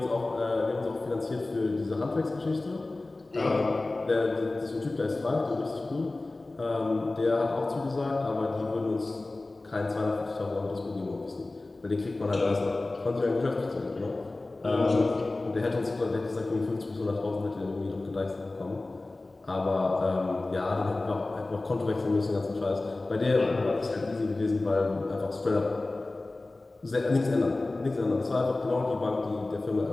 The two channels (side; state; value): right; quieter; 3.0 dB